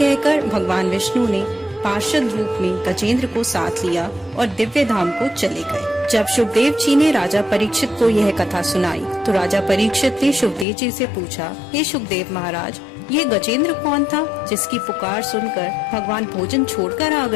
भगवान विष्णु ने पार्षद रूप में गजेंद्र को साथ लिया और दिव्य धाम को चले गए। जब शुकदेव जी ने राजा परीक्षित को यह कथा सुनाई, तो राजा परीक्षित ने शुकदेव जी से पूछा, हे शुकदेव महाराज, ये गजेंद्र कौन था जिसकी पुकार सुनकर भगवान भोजन छोड़कर आ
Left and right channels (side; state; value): right; drops out; at 10.7 s